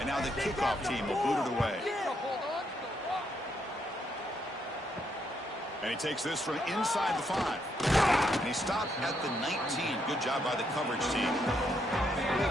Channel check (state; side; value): normal; both; correlation 0.76